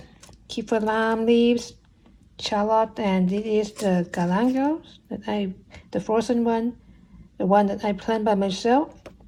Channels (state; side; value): identical; both; correlation 1.00